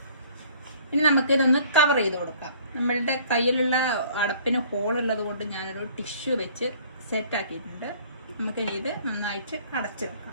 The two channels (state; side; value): inverted; both; correlation -0.54